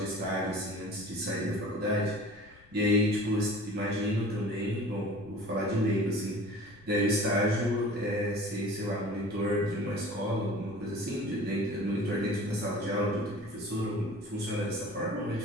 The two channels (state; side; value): noise; left; rumble, 26 dB below the sound